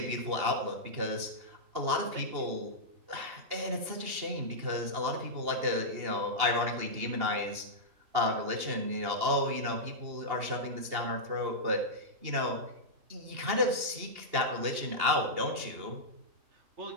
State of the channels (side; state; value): left; late; 2.8 ms